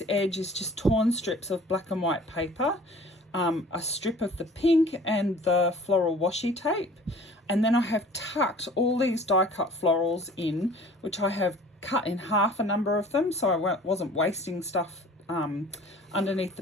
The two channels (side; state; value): both; normal; correlation 0.48